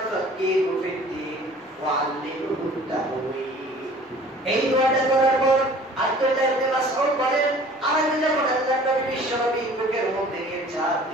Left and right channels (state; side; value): normal; both; correlation 0.49